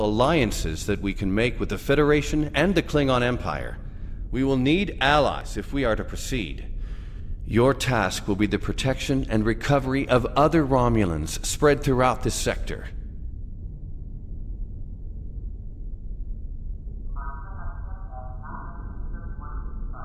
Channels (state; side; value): identical; both; correlation 1.00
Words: alliances that we can make with the Federation and the Klingon Empire. We will need allies if we are to proceed. Your task will be the protection and recovery of other Romulans spread throughout this sector.